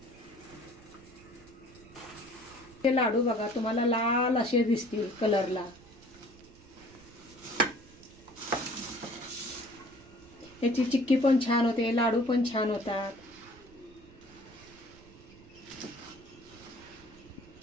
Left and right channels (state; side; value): noise; right; rumble, 23 dB below the sound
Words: हे लाडू बघा तुम्हाला लाल असे दिसतील कलरला. याची चिक्की पण छान होते, लाडू पण छान होतात.